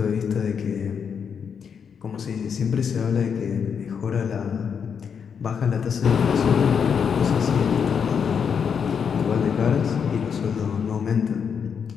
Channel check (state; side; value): quieter; right; 6.9 dB